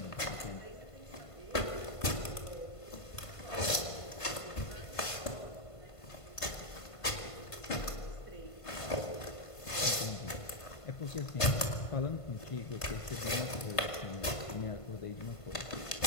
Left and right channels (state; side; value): late; right; 1.5 ms